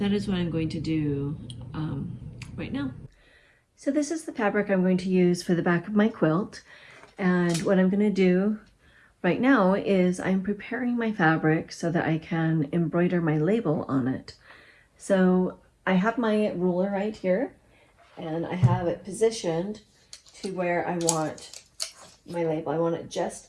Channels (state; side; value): identical; both; correlation 1.00